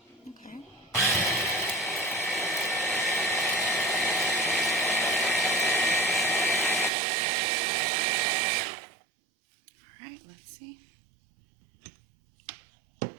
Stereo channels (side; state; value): left; drops out; at 6.9 s